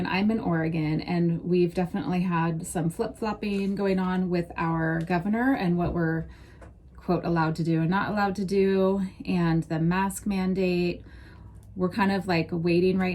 and we've definitely had some flip-flopping going on with our governor and what we're, quote, allowed to do and not allowed to do, and the mask mandate. We're kind of like waiting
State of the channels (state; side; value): identical; both; correlation 1.00